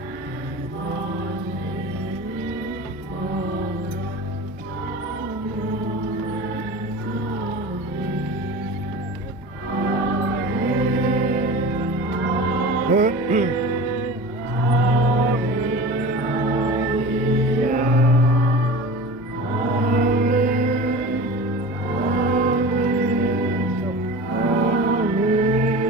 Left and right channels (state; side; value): normal; both; correlation 0.34